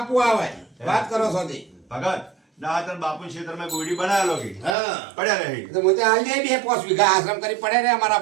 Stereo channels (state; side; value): drops out; left; at 4.8 s